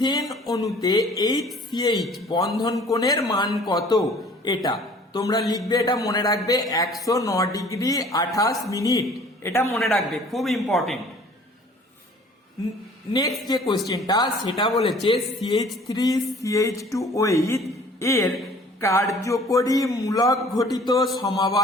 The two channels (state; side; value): normal; both; correlation 0.51